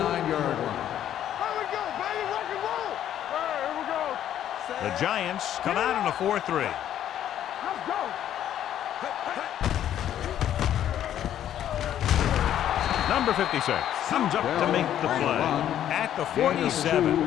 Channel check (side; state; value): right; quieter; 11.0 dB